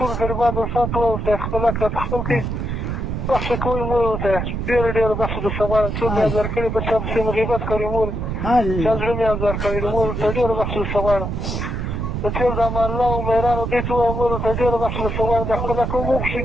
غریبان دوستان ته ووایئ خپل حق راته خپل کړئ، بخښه کوئ مور ورته ډېره ډېره بخښه درڅه غواړم. څوک مې ازار کړي په چا پسې مې غیبت کړی مور، چا زړه مې ازار کړی دی مور ورته ډېره بخښه درڅه غواړم. د تېر د امان الله او مهرانو دې ته ووایم مور ورته ډېره بخښه درڅه غواړم. د خپل حق وبخښئ،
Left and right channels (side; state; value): right; noise; rumble, 3 dB below the sound